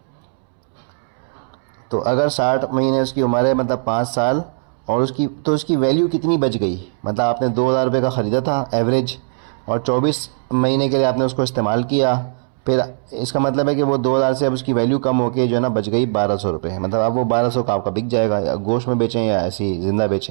तो अगर 60 महीने उसकी उम्र है, मतलब 5 साल, और उसकी वैल्यू कितनी बच गई। मतलब आपने 2,000 रुपये का ख़रीदा था एवरेज, और 24 महीने के लिए आपने उसको इस्तेमाल किया, फिर इसका मतलब है कि वो 2,000 से अब उसकी वैल्यू कम होकर जो है ना बच गई 1,200 रुपये। मतलब अब वो 1,200 का आपका बिक जाएगा, या गोश्त में बेचें या ऐसे ही ज़िंदा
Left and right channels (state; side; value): silent; left; 66 dB below the other